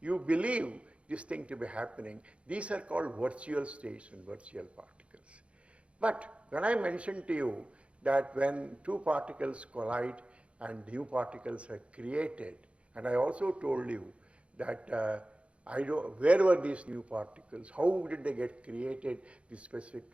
You believe this thing to be happening. These are called virtual states and virtual particles. But when I mentioned to you that when two particles collide and new particles are created, and I also told you that where were these new particles, how did they get created, the specific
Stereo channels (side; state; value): left; late; 0.061 ms